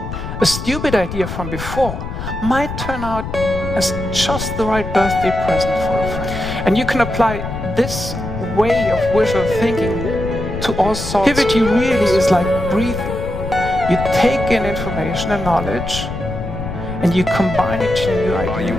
a stupid idea from before might turn out as just the right birthday present for a friend. And you can apply this way of visual thinking to all sorts. Creativity really is like breathing. You take in information and knowledge, and you combine it to new Are you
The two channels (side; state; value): left; noise; rumble, 7 dB below the sound